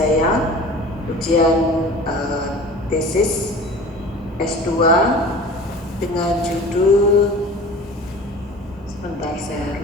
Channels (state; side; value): normal; both; correlation 0.40